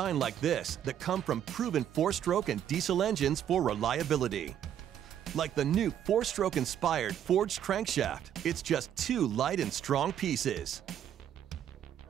like this that come from proven 4-stroke and diesel engines for reliability. Like the new 4-stroke inspired forged crankshaft, it's just 2 light and strong pieces.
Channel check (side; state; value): left; quieter; 10.1 dB